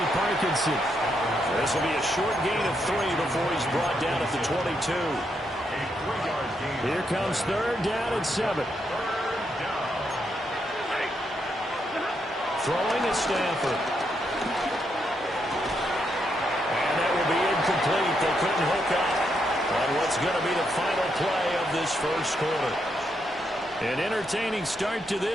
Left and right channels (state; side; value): normal; both; correlation 0.79